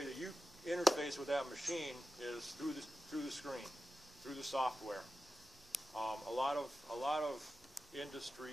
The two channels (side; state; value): right; noise; rumble, 29 dB below the sound